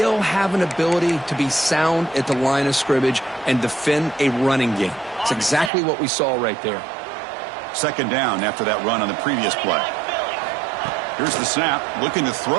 have an ability to be sound at the line of scrimmage and defend a running game. It's exactly what we saw right there. 2nd down after that run on the previous play. Here's the snap, looking to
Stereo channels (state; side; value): drops out; left; at 5.7 s